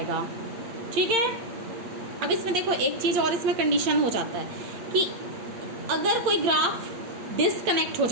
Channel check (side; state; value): left; late; 8.7 ms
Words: ठीक है। अब इसमें देखो एक चीज और इसमें कंडीशन हो जाता है कि अगर कोई ग्राफ डिसकनेक्ट हो